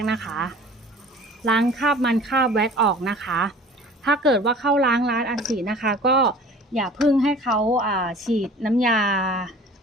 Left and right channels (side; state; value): both; normal; correlation 0.45